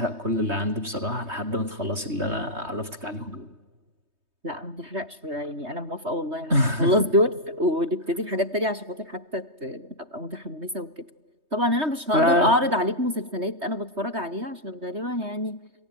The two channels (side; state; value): left; late; 3.2 ms